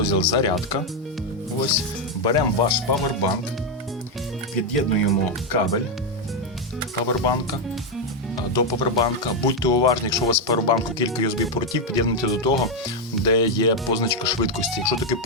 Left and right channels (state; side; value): normal; both; correlation 0.03